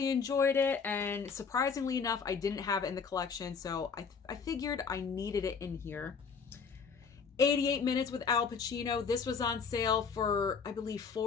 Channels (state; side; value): quieter; right; 5.7 dB